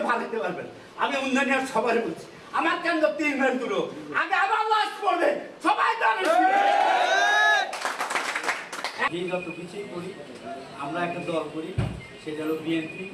ভালো হইতে পারবেন। আমি উন্নয়নের সবাই বলছি আমার কেন্দ্র 3 মাইল দূর, আগে আবার লাশ পড়বে সবাই জানে। যত কিছুই করি আমরা একটা দল করি, সেটা হলো বিএনপি,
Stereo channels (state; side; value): identical; both; correlation 1.00